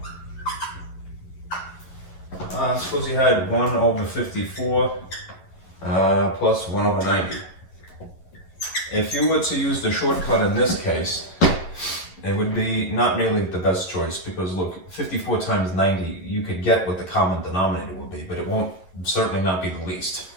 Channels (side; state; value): right; late; 11 ms